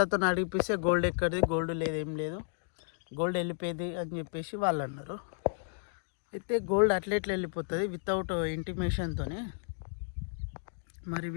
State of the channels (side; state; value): right; silent; digital silence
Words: అడిగిపిస్తే గోల్డ్ ఎక్కడిది, గోల్డ్ లేదు, ఏం లేదు, గోల్డ్ వెళ్ళిపోయింది అని చెప్పేసి వాళ్ళు అన్నారు. అయితే గోల్డ్ అట్లెట్లు వెళ్ళిపోతుంది వితౌట్ ఇంటిమేషన్తోనే. మరి